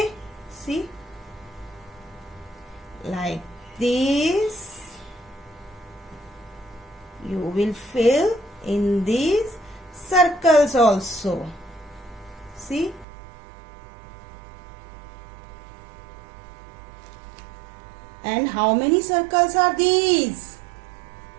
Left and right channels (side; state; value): left; drops out; at 13.1 s